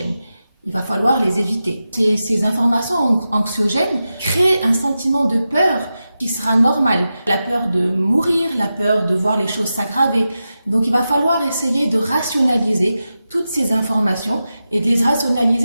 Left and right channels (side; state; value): both; inverted; correlation -0.92